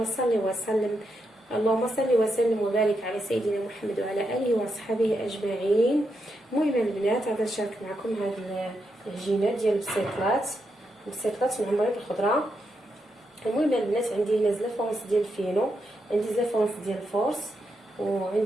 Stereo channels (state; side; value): normal; both; correlation 0.83